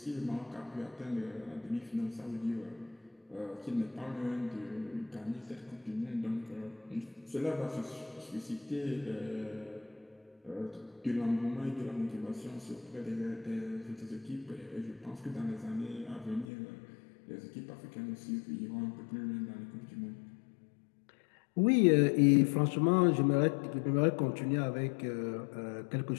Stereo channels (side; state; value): right; drops out; at 16.4 s